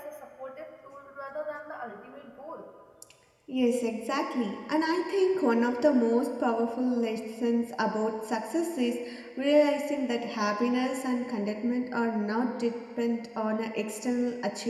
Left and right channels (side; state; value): both; identical; correlation 1.00